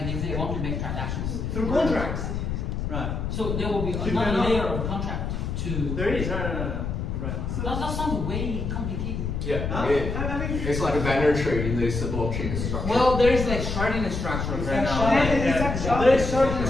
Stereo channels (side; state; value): left; noise; rumble, 3 dB below the sound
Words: they want to make transactions through contracts, right? So there will be another layer of contract to. There is, right. So that sounds way complicated. Yeah, it's like a binary tree in this blockchain structure. Well, there is like sharding structures right now. There is sharding